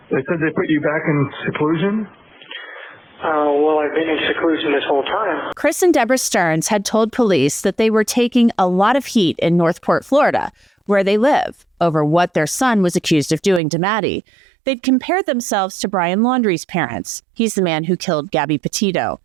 They said they put you back in seclusion? Well, I've been in seclusion this whole time. Chris and Deborah Sterns had told police that they were taking a lot of heat in Northport, Florida, where they live, over what their son was accused of doing to Maddie. They'd compared themselves to Brian Laundrie's parents. He's the man who killed Gabby Petito.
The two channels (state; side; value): drops out; left; at 13.6 s